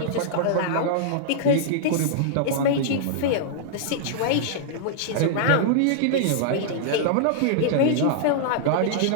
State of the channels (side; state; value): both; different; correlation -0.01